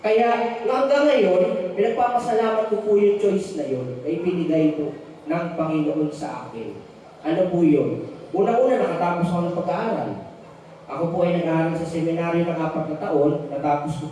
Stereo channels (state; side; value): identical; both; correlation 1.00